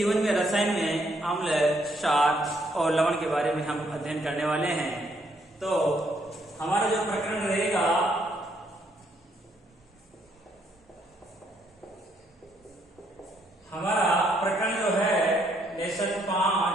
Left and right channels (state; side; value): normal; both; correlation 0.71